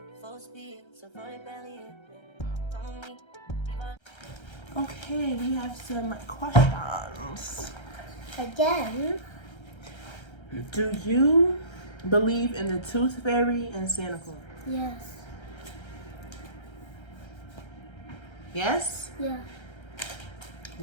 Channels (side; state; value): right; late; 1.3 ms